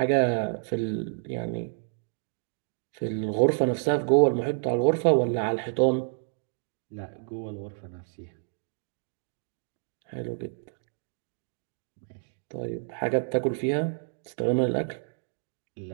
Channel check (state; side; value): silent; left; digital silence